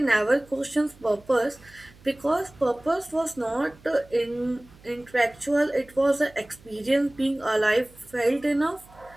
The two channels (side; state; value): right; noise; hum, 25 dB below the sound